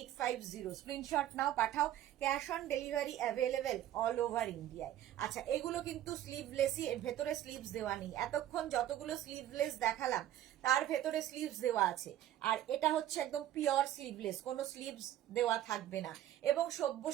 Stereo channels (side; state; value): left; quieter; 12.5 dB